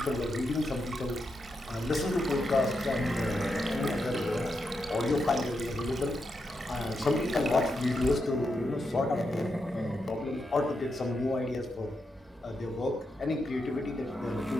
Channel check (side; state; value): both; normal; correlation 0.84